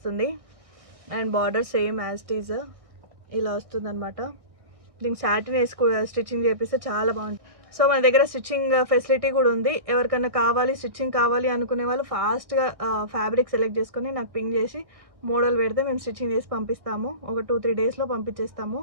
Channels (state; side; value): late; left; 1.6 ms